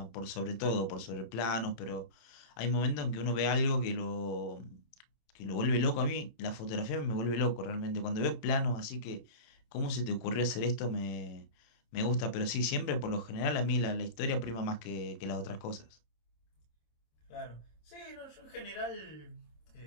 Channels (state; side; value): late; right; 27 ms